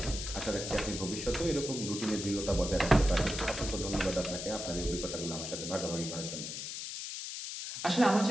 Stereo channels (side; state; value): left; noise; hiss, 6 dB below the sound